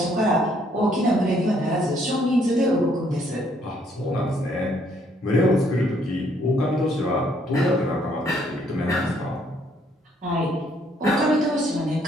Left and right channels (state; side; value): normal; both; correlation 0.67